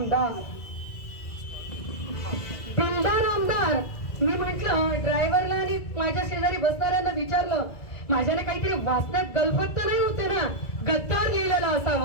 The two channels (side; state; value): right; late; 2.0 ms